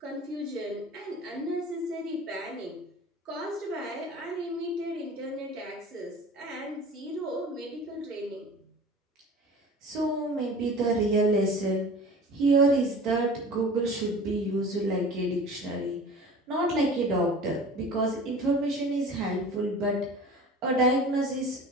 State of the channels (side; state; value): both; normal; correlation 0.40